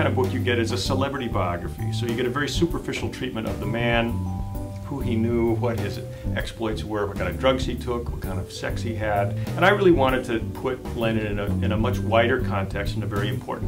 of book you get is a celebrity biography. So you get a very superficial treatment of the man, who he knew, what his exploits were, what kind of drugs he took, what kind of sex he had. And I really wanted to put Lennon in a much wider context, in a very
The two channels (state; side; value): identical; both; correlation 1.00